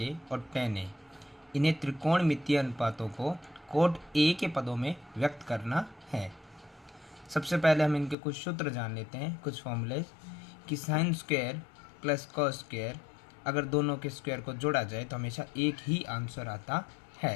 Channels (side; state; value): right; drops out; at 8.2 s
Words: ए और टेन ए, इन्हें त्रिकोणमितीय अनुपातों को कोट ए के पदों में व्यक्त करना है। सबसे पहले हम इनके कुछ सूत्र जान लेते हैं, कुछ फॉर्मूले कि sine square plus cos square, अगर दोनों के स्क्वायर को जोड़ा जाए तो हमेशा एक ही आंसर आता